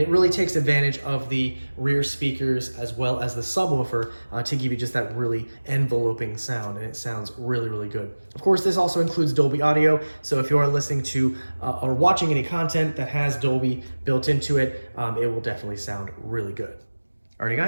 really takes advantage of the rear speakers as well as the subwoofer to give you just that really enveloping sound, and it sounds really, really good. Of course, this also includes Dolby audio, so if you are listening to or watching any content that has Dolby built into it, it will definitely sound really good. Alrighty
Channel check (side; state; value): both; inverted; correlation -1.00